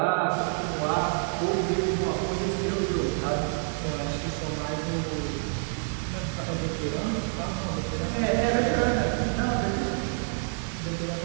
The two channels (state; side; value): silent; left; 57 dB below the other